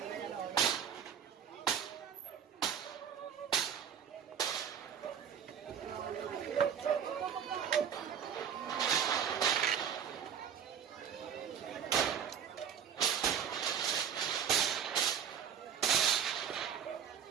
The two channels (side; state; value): left; quieter; 8.2 dB